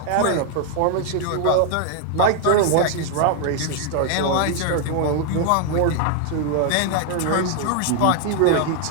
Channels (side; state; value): both; different; correlation 0.00